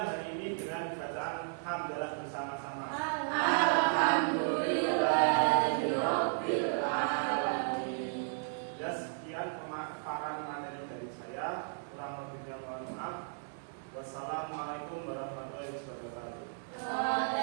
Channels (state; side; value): silent; left; digital silence